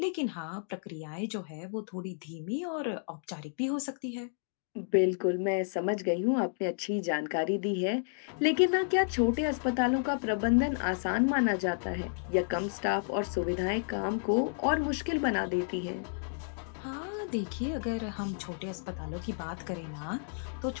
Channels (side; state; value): right; silent; digital silence